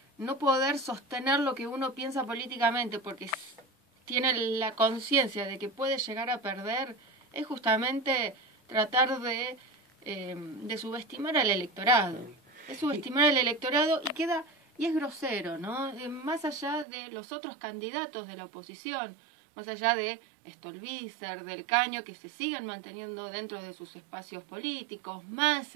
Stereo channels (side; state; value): left; drops out; at 16.9 s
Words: no poder sostener lo que uno piensa políticamente porque tiene la conciencia de que puede llegar a perder, es justamente tratar de subestimar al electorado. Es subestimar al electorado y es grosero, ¿no? Más allá de los otros candidatos de la oposición, más allá de Stolbizer, del Caño, que se siguen manteniendo dentro de sus espacios políticos,